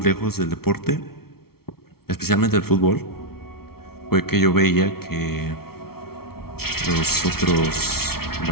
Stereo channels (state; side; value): late; right; 0.94 ms